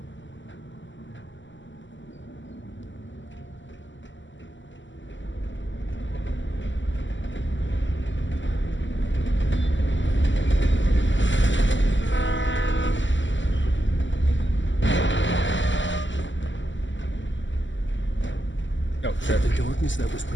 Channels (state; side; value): late; right; 0.54 ms